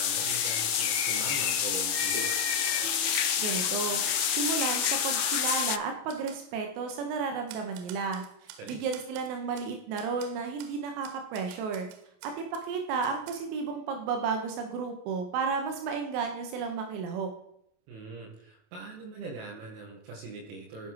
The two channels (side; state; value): left; late; 28 ms